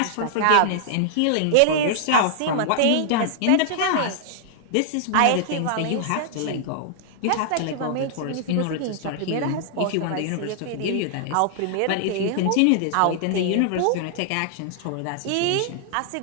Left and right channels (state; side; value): different; both; correlation -0.01